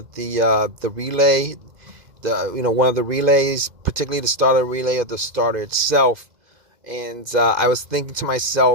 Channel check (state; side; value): late; left; 2.5 ms